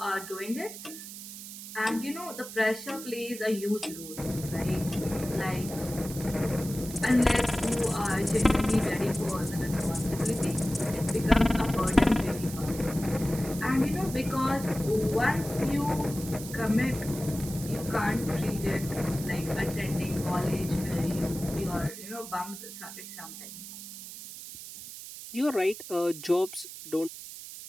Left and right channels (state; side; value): noise; right; hiss, 12 dB below the sound